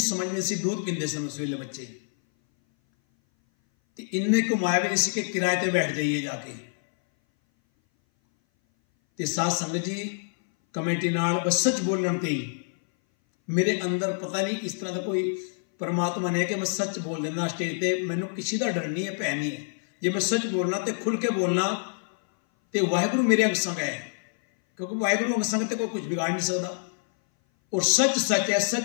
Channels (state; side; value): silent; right; 58 dB below the other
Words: समझ में सी दूध पींदे सन उस वेले बच्चे, तो इन्ने घुमाया भी नहीं सी कि किराए पर बैठ जाइए जाके। तो साध संगत जी कमेटी नाल बस सच बोलने ते ही मेरे अंदर पता नहीं इस तरह का कोई परमात्मा ने कि मैं सच बोल देना स्टेज पर, मैनू किसी का डर नहीं है, भै नहीं है। जे मैं सच बोलना तो खुल के बोलना तो वाहिगुरु मेरे अंग संग है, क्योंकि वाहिगुरु अंग संग तो कोई कुछ बिगाड़ नहीं सकता, और सच सच है,